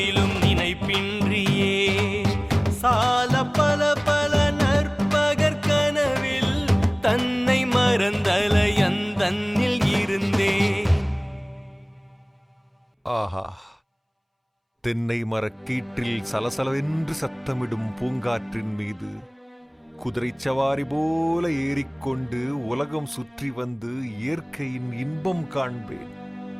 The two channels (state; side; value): identical; both; correlation 1.00